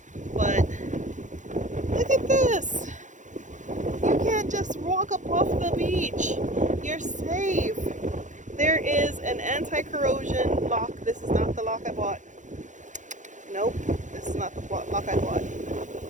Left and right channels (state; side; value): late; left; 0.36 ms